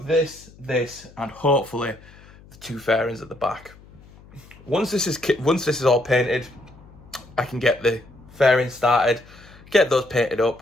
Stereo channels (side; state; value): left; noise; hum, 23 dB below the sound